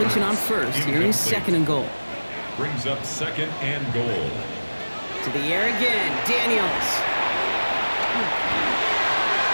on first. Here is 2nd and goal. Brings up 2nd and goal. To the air again, Daniels.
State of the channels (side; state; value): both; inverted; correlation -1.00